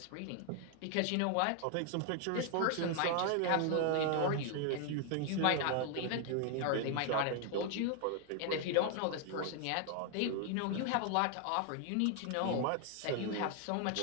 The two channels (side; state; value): both; different; correlation 0.00